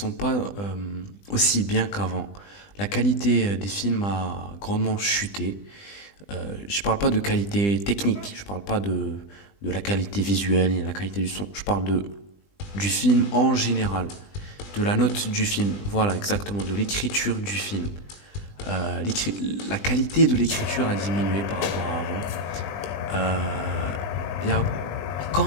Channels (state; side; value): late; right; 20 ms